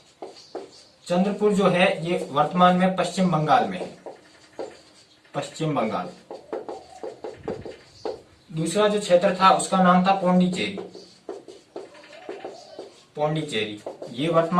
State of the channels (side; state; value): both; identical; correlation 1.00